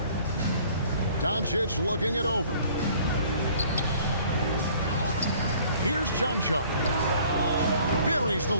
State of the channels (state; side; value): inverted; both; correlation -0.54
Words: Doncic looking it over. Here's Chanchar. Buries the